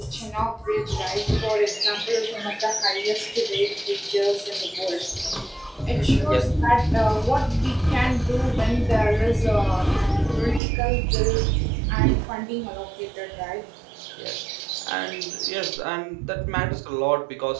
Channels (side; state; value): left; drops out; at 10.6 s